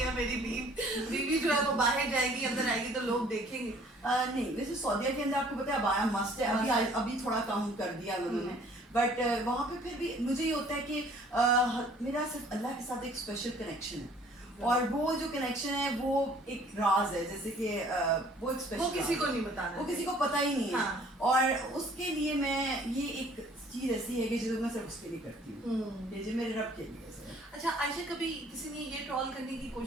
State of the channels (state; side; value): normal; both; correlation 0.56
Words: मेरी बीवी जो है वो बाहर जाएगी, अंदर आएगी तो लोग देखेंगे। नहीं, वैसे सऊदीया के अंदर आपको पता है अबाया मस्त है, अभी थोड़ा कम कर दिया उन्होंने, बट वहाँ पे फिर भी मुझे ये होता है कि मेरा सिर्फ अल्लाह के साथ एक स्पेशल कनेक्शन है, और वो जो कनेक्शन है वो एक राज है, जैसे कि वो एक स्पेशल, वो किसी को नहीं बताना, वो किसी को पता ही नहीं है। हाँ। और उसके लिए मैं ये एक चीज ऐसी है कि जो मैं सिर्फ उसके लिए करती हूँ, ये जो मेरे रब के लिए है। अच्छा आयशा, कभी किसी ने ये ट्रोल करने की